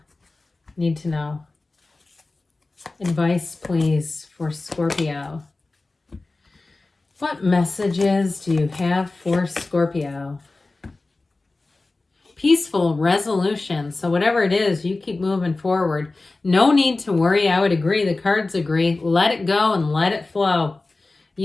need to know? Advice, please, for Scorpio. What messages do you have for Scorpio? Peaceful resolution. So whatever it is, you keep moving forward. No need to worry. I would agree. The cards agree. Let it go and let it flow.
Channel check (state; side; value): quieter; right; 3.3 dB